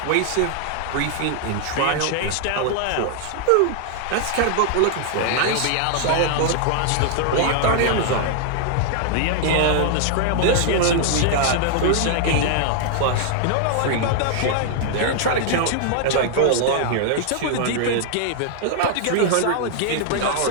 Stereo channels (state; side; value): different; both; correlation -0.01